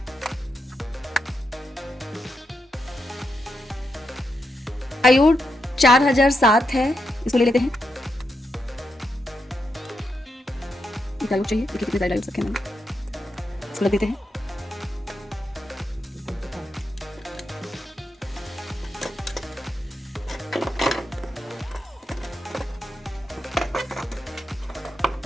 डायोड 4007 है, इसको ले लेते हैं। डायोड चाहिए, देखिए कितने डायोड रखे हैं, इसको लग देते हैं।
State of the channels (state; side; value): normal; both; correlation 0.84